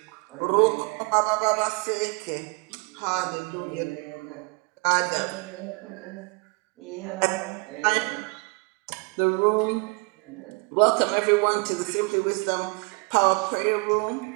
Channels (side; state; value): left; quieter; 30.0 dB